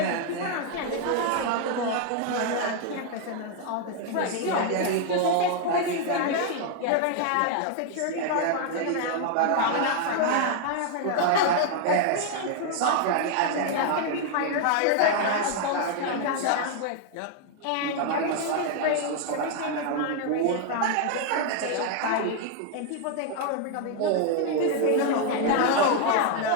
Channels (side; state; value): both; different; correlation 0.00